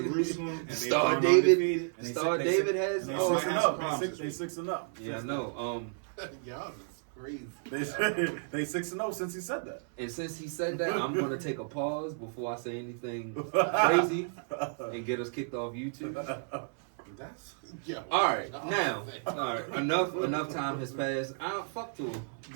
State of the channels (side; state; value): left; silent; 56 dB below the other